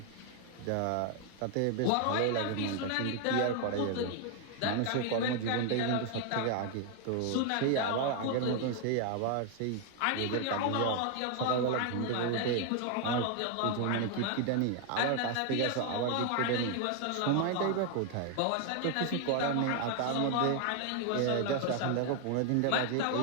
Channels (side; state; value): both; different; correlation 0.00